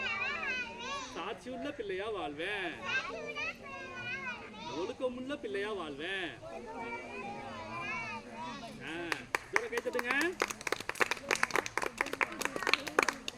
சாட்சியுள்ள பிள்ளையா வாழ்வேன். ஒழுக்கமுள்ள பிள்ளையா வாழ்வேன். கை தட்டுங்க.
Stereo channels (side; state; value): both; identical; correlation 1.00